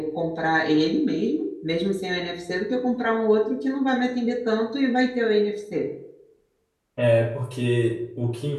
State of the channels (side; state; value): both; identical; correlation 1.00